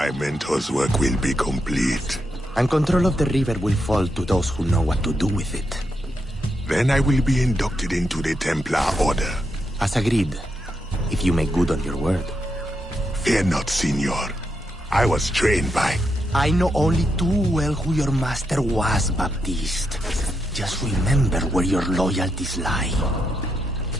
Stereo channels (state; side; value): normal; both; correlation 0.82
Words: mentor's work will be complete. And control of the river will fall to those who know what to do with it. Then I will be inducted into the Templar Order. As agreed, if you make good on your word. Fear not, Signor. I was trained by... I know only too well who your master was, Baptiste. Just remember where your loyalties lie.